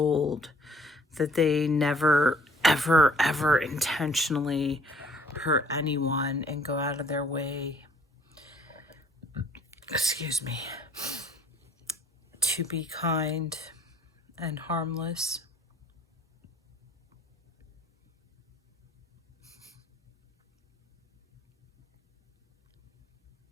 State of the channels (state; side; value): normal; both; correlation 0.59